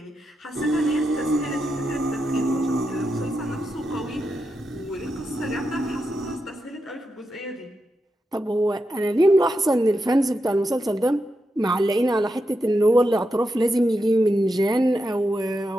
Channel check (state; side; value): normal; both; correlation 0.87